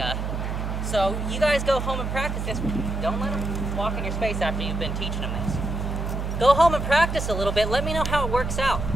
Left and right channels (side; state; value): right; noise; hum, 3 dB below the sound